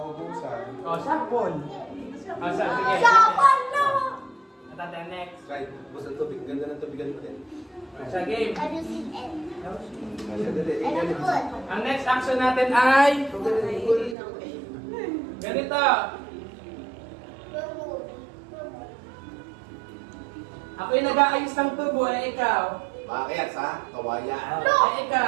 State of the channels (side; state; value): left; drops out; at 14.2 s